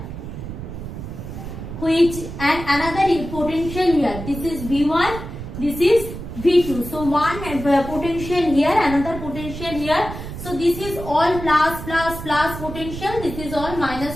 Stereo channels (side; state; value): right; noise; rumble, 9 dB below the sound